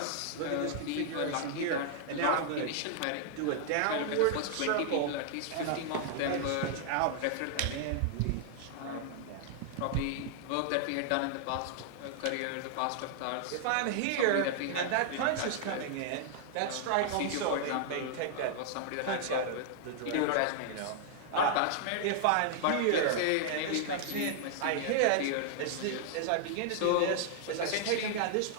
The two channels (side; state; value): both; different; correlation -0.01